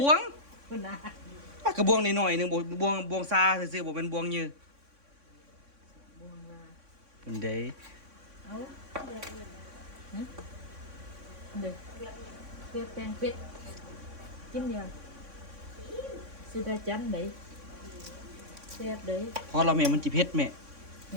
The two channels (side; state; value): left; late; 3.6 ms